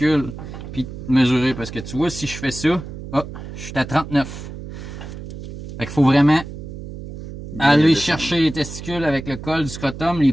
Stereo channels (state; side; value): noise; right; hum, 11 dB below the sound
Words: puis mesurer. Parce que tu vois, si je fais ça, oh, je suis à 39. Fait qu'il faut vraiment aller chercher les testicules avec le col du scrotum,